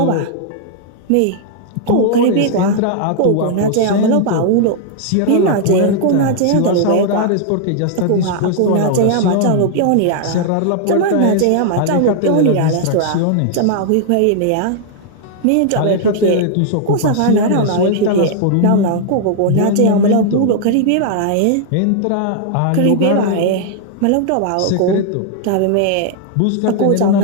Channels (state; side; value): different; both; correlation -0.01